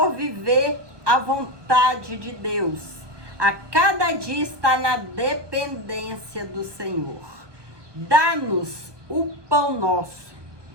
viver a vontade de Deus. A cada dia está na dependência do Senhor. Dá-nos o pão nosso.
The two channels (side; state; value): left; late; 1.2 ms